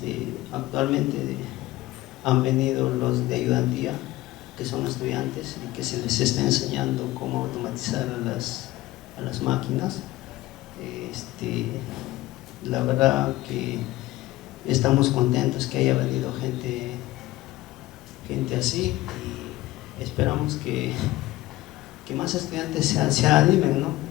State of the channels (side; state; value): right; quieter; 17.3 dB